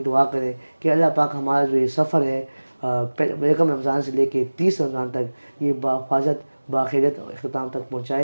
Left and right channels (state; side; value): inverted; both; correlation -1.00